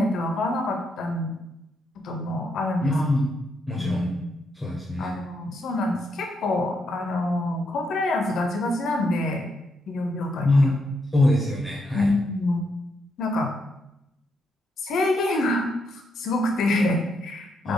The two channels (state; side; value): normal; both; correlation 0.78